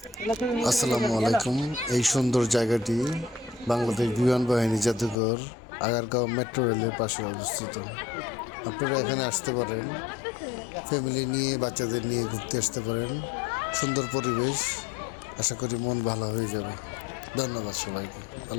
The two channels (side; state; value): right; drops out; at 5.2 s